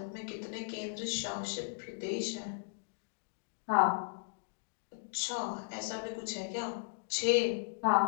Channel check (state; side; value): silent; right; digital silence